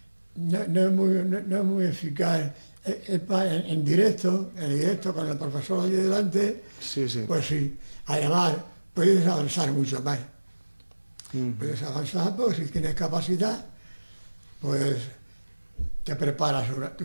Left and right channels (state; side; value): inverted; both; correlation -1.00